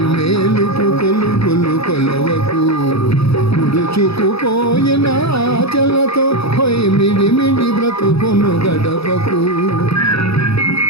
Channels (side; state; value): right; late; 0.77 ms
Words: కొలువులు కొలవకు. ముడుచుకుపోయిన ఆచలతో పోయి మిడిమిడి బ్రతుకును గడపకు.